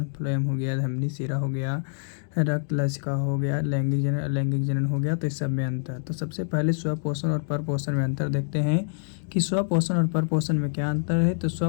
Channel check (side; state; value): right; silent; digital silence